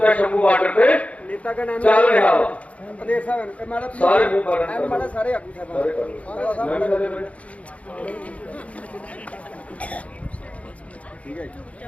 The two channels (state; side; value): late; right; 0.065 ms